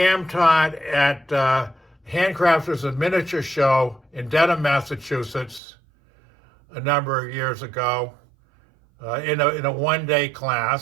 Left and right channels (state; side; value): drops out; left; at 5.6 s